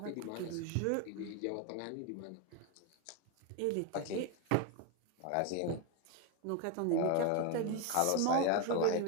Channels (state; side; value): different; both; correlation 0.02